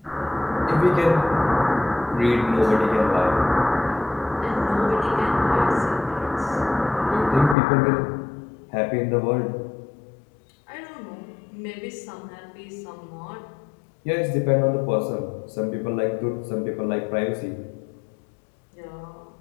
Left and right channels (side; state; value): right; drops out; at 7.6 s